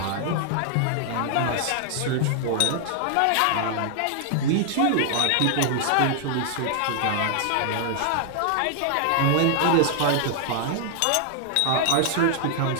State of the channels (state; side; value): different; both; correlation -0.01